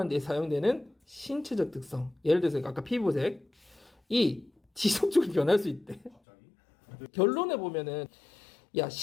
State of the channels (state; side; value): drops out; right; at 6.2 s